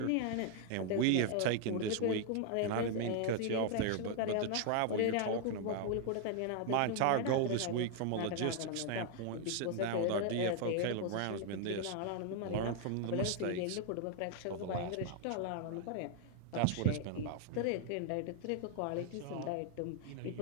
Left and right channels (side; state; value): both; different; correlation 0.00